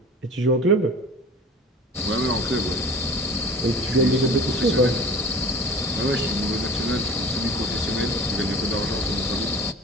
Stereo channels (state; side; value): normal; both; correlation 0.41